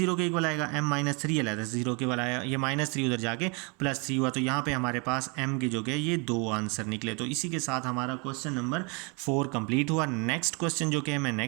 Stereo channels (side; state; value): left; quieter; 32.1 dB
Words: के इक्वल आएगा, m - 3 अलहदा से 0 के इक्वल आया, ये -3 उधर जाके +3 हुआ। तो यहाँ पे हमारे पास m के जो कि ये 2 आंसर निकले। तो इसी के साथ हमारा क्वेश्चन नंबर 4 कंप्लीट हुआ। नेक्स्ट क्वेश्चन जो कि मैं